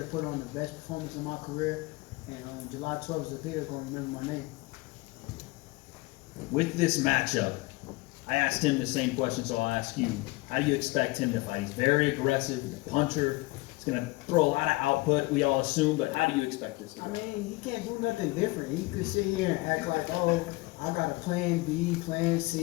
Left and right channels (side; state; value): right; quieter; 23.0 dB